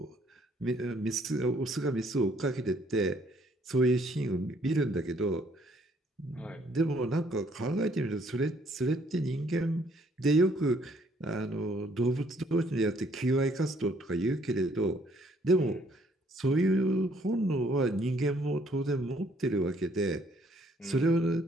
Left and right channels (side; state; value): both; normal; correlation 0.65